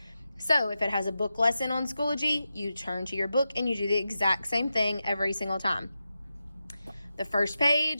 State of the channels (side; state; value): both; inverted; correlation -0.91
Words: So if it has a book lesson on Schoology, you turn to your book and you do the exact same thing every single time. The first